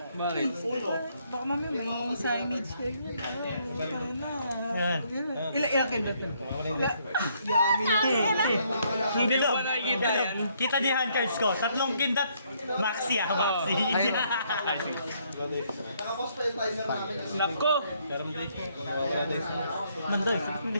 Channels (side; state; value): both; inverted; correlation -0.69